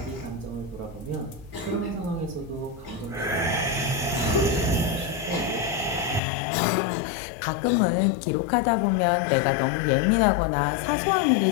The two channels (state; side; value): drops out; right; at 6.2 s